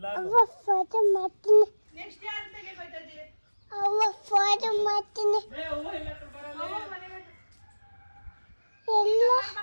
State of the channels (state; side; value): inverted; both; correlation -1.00